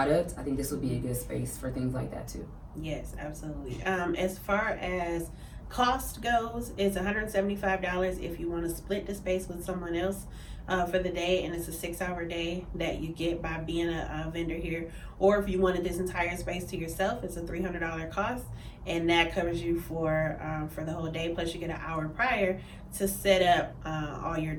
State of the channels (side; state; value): both; identical; correlation 1.00